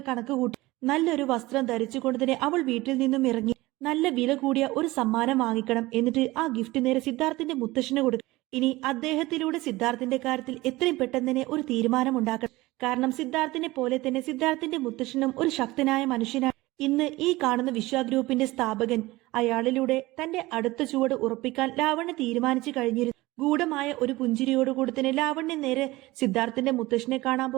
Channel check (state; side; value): quieter; left; 19.7 dB